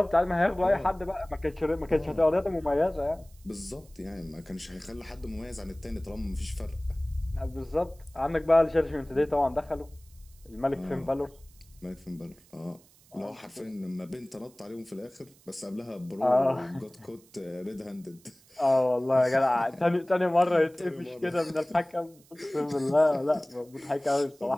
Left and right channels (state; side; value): noise; right; hiss, 28 dB below the sound